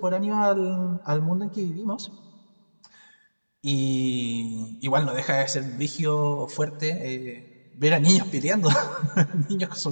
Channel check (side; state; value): both; inverted; correlation -1.00